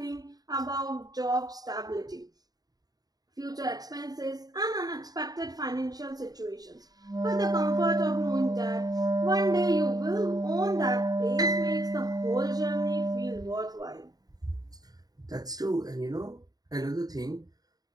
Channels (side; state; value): left; late; 0.18 ms